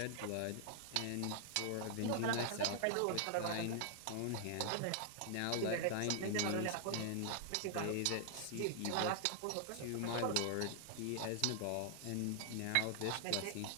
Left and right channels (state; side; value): different; both; correlation 0.00